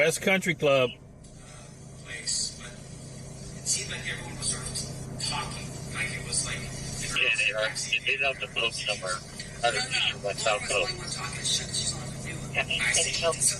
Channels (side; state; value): both; identical; correlation 1.00